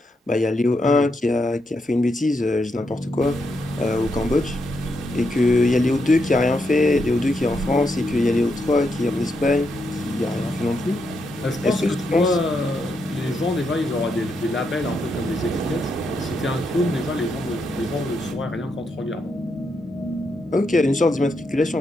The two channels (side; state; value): both; normal; correlation 0.81